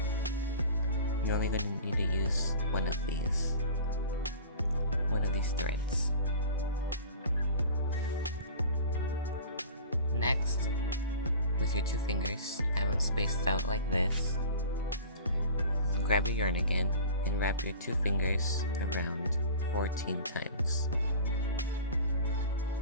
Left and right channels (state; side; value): inverted; both; correlation -0.39